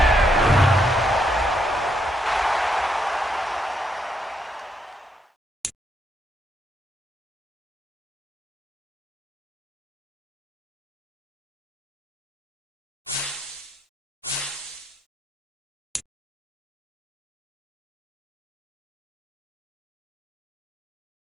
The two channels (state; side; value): normal; both; correlation 0.77